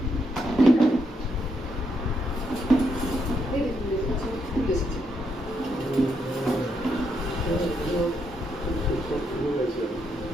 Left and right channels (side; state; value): both; normal; correlation 0.78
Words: এই দেখুন লেবু গাছে ফুল এসেছে।